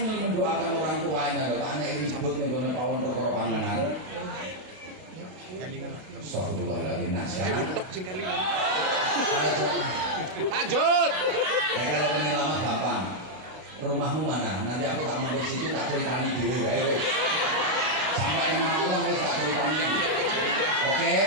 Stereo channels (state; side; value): late; left; 32 ms